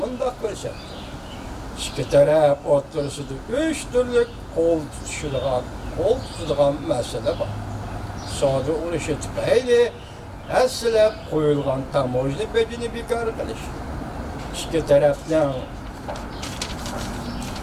ko'rsatdi. Ikki taraf o'rtasida 3 turli qo'l tutadigan masala bor. Savdo urushi tufayli aslab qo'yilgan tamojni bedini bekor qilish. Ikki tarafdan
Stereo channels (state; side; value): identical; both; correlation 1.00